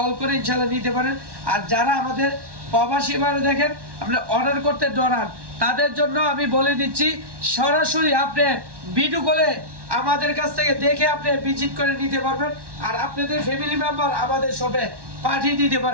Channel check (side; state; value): left; late; 1.1 ms